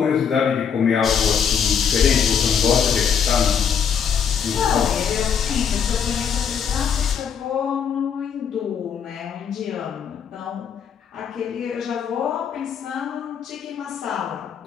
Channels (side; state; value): right; quieter; 7.3 dB